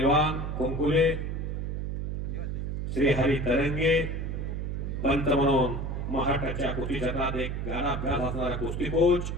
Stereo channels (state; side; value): noise; right; hum, 3 dB below the sound